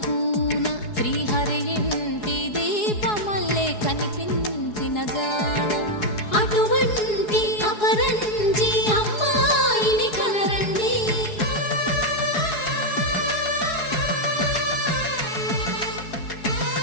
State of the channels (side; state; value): right; late; 4.7 ms